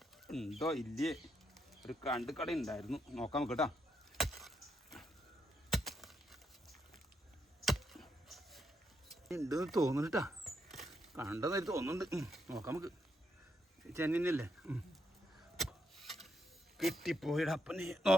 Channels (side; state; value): both; normal; correlation 0.79